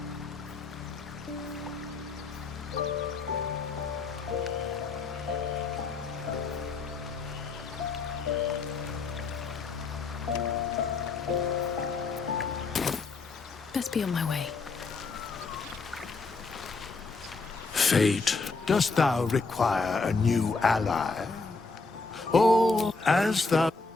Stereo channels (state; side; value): quieter; right; 4.0 dB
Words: Best be on my way. Fate, dost thou require a new ally? Or, as thou...